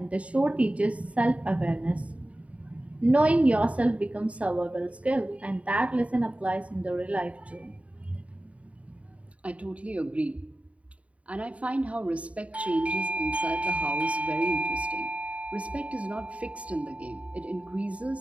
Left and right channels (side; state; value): left; late; 0.065 ms